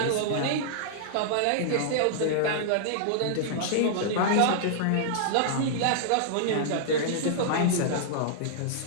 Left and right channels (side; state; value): both; different; correlation -0.02